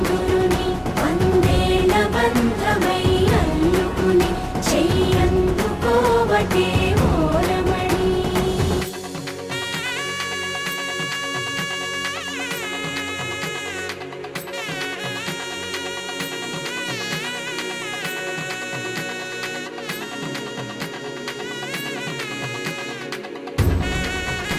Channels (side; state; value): both; identical; correlation 1.00